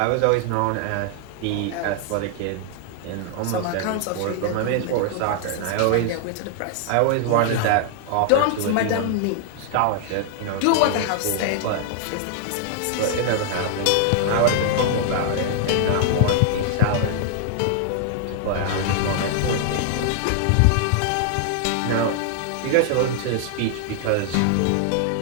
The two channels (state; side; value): different; both; correlation 0.00